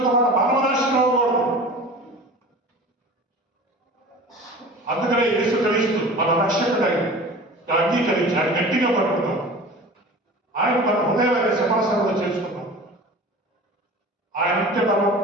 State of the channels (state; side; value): normal; both; correlation 0.38